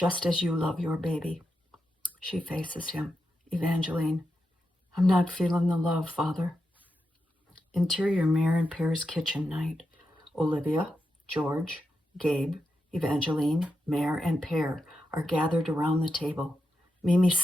as you love your baby. She faces him. Evangeline, I'm not feeling the love, Father. Interior Mare and Pear's kitchen night. Olivia, George, Gabe, Evangeline, Mare, and Pear are gathered around the table. Mimi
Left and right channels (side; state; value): both; normal; correlation 0.87